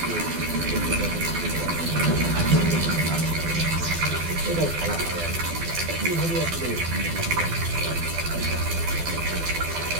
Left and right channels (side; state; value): left; late; 12 ms